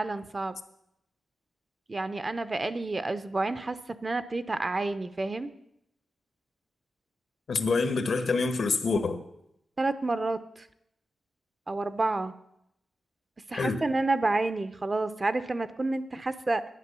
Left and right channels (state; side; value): normal; both; correlation 0.91